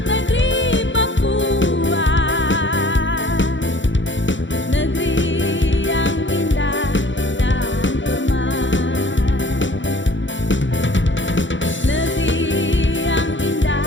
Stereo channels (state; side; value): late; right; 0.54 ms